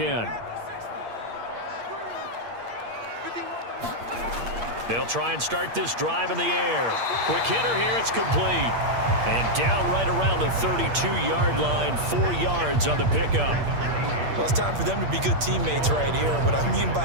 They'll try and start this drive in the air. Quick hitter here, it's complete. And down right around the 32-yard line, 4 yards on the pickup. Well, it's time for them to be good teammates right here. And what I mean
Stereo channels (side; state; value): left; late; 8.6 ms